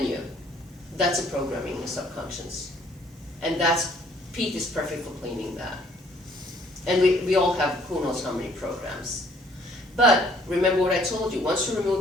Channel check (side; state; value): both; normal; correlation 0.61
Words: you. That's a programming in the subconscious. And that's, PEAT is perfect for cleaning that. And we all have who knows how many programs. But remember what I told you, once you